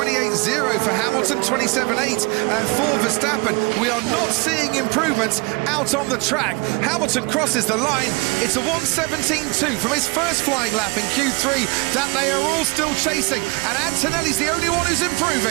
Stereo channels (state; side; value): quieter; left; 28.5 dB